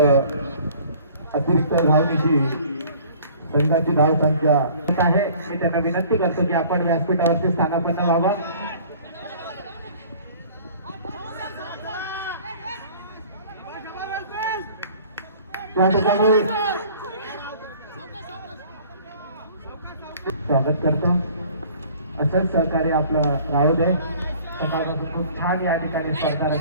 अतिरिक्त धावनीची संघाची धावसंख्या आहे. मी त्यांना विनंती करतो की आपण व्यासपीठावरती स्थानापन्न व्हावं. त्या ठिकाणी स्वागत करतो. असंच सहकार्य आपलं राहू दे. सकाळपासून खूप छान या ठिकाणी स्पर्धा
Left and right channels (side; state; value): both; inverted; correlation -0.50